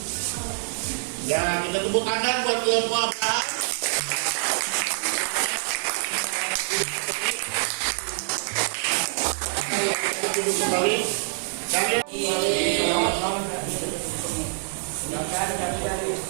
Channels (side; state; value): left; silent; digital silence